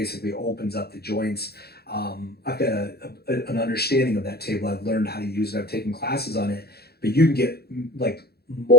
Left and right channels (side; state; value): right; late; 0.46 ms